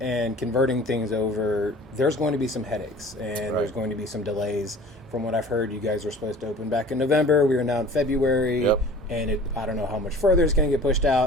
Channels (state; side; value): normal; both; correlation 0.44